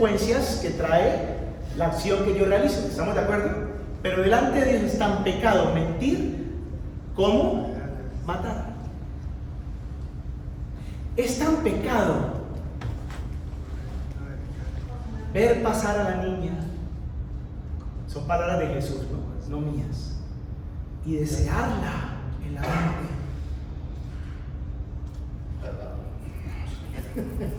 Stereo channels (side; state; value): both; identical; correlation 1.00